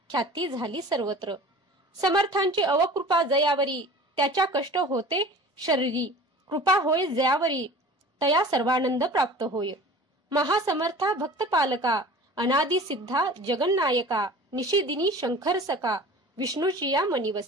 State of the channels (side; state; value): both; normal; correlation 0.41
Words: ख्याती झाली सर्वत्र. समर्थांची अवकृपा जयावरी, त्याच्या कष्ट होते शरीरी. कृपा होय जयावरी, तया सर्वानंद प्राप्त होय. महासमर्था भक्त पालका, अनादि सिद्धा जगन्नायका. निशिदिनी शंकर सका, विष्णूची या